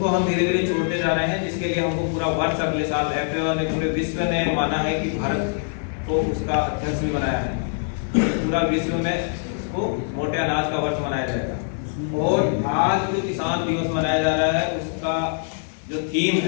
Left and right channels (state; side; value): silent; right; digital silence